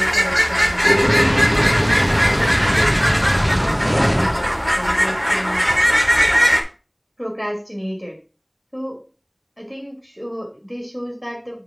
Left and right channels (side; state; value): both; identical; correlation 1.00